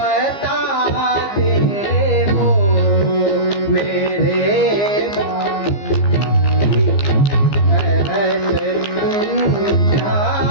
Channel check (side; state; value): right; late; 15 ms